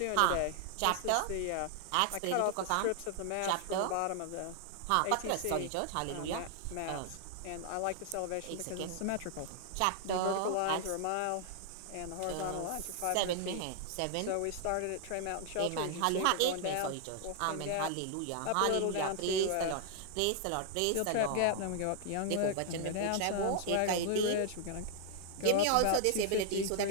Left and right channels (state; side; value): different; both; correlation 0.00